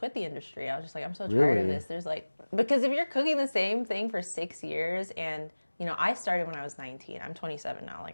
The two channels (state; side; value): inverted; both; correlation -1.00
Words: the industry. I was just like, I'm so tired of Really? this. There's like, because if you're cooking the same thing for 6 years, and, I started when I was 19. I'm 27 now.